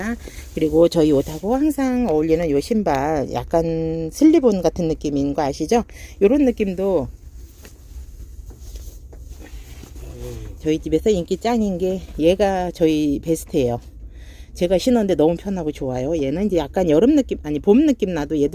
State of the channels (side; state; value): both; identical; correlation 1.00